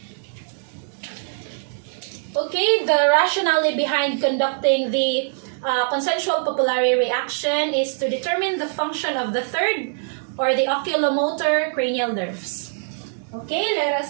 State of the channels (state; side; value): silent; left; digital silence